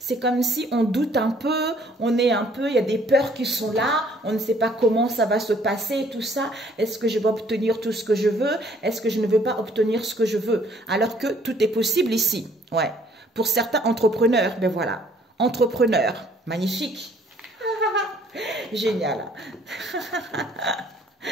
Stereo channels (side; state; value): both; normal; correlation 0.61